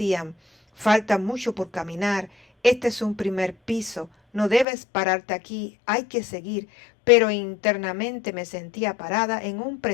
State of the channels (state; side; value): drops out; right; at 4.7 s